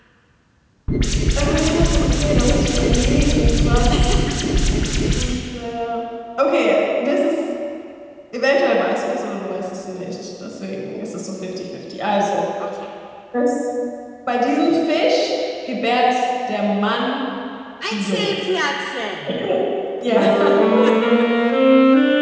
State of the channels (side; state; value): both; identical; correlation 1.00